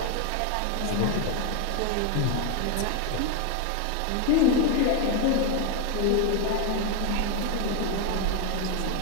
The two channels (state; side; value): different; both; correlation 0.01